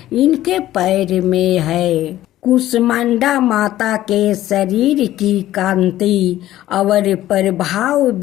पैर में है। कुष्मांडा माता के शरीर की कांति और प्रभाव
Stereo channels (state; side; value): quieter; right; 14.1 dB